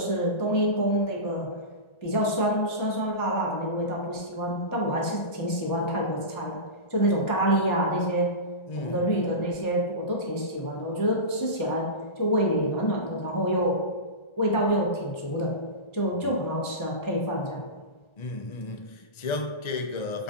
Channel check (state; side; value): late; right; 1.4 ms